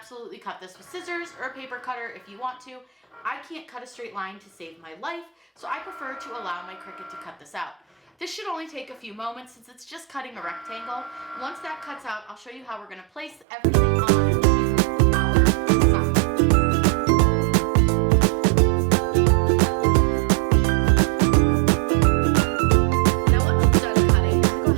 cut this with scissors or a paper cutter if you want to. I can't cut a straight line to save my life, so I prefer to allow my Cricut to cut this out. This should only take a few moments since it's just cutting a rectangle. Once that cuts out, I'll show you how we're going to place everything on our sign. Now once it's done cutting, go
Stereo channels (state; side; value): drops out; left; at 13.5 s